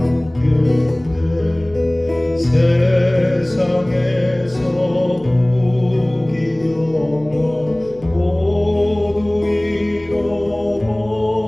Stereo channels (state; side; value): noise; left; hum, 24 dB below the sound